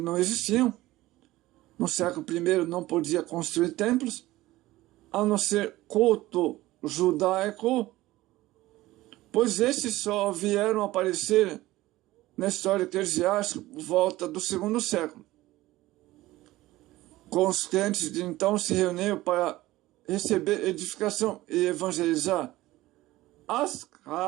existiam, no século I não podia construir templos, a não ser culto judaico, pois esses só vieram aparecer na história eclesiástica por volta do segundo século. Com os crentes de então se reuniam para receber edificação e evangelizar. As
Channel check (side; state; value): left; quieter; 17.4 dB